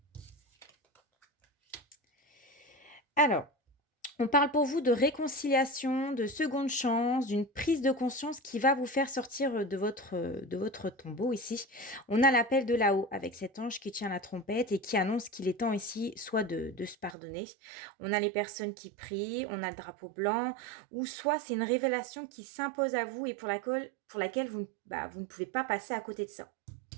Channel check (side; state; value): left; drops out; at 17.2 s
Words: Alors, on parle pour vous de réconciliation, de seconde chance, d'une prise de conscience qui va vous faire sortir de votre tombeau ici. On a l'appel de là-haut avec cet ange qui tient la trompette et qui annonce qu'il est temps ici soit de se pardonner. On a les personnes qui prient, on a le drapeau blanc, ou soit c'est une révélation qui s'impose à vous et pour laquelle vous ne pouvez pas passer à côté de ça.